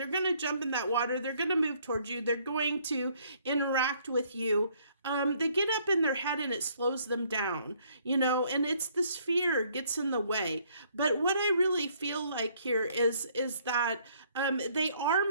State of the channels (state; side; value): inverted; both; correlation -0.64